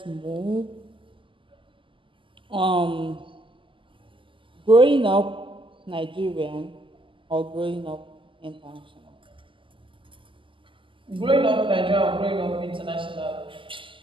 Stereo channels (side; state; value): left; late; 0.25 ms